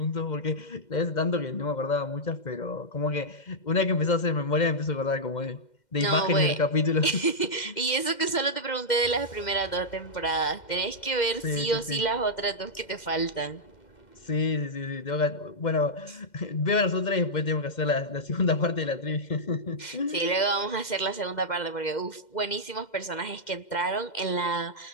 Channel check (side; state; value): right; late; 2.1 ms